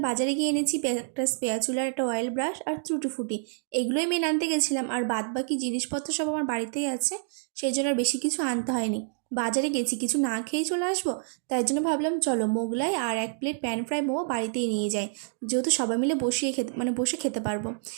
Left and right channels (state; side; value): silent; left; digital silence